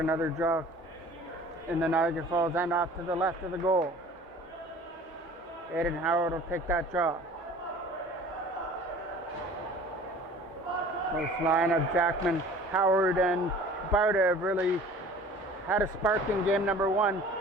draw in the Niagara Falls end off to the left of the goal. Aidan Howard will take that draw. This line of Jackman, Howard, and Bowder have really had a spark in game number 1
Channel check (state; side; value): normal; both; correlation 0.46